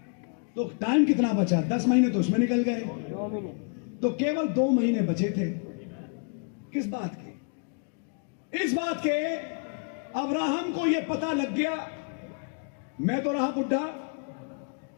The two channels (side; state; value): right; quieter; 39.5 dB